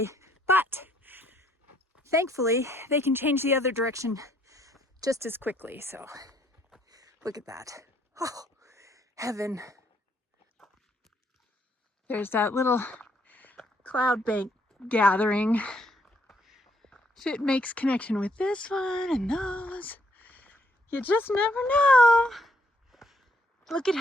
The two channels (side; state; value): both; normal; correlation 0.69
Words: but thankfully they can change the other direction just as quickly. So look at that. Oh, heaven. There's that little cloud bank gathering. If it makes connection with this one and those, you just never know. Look at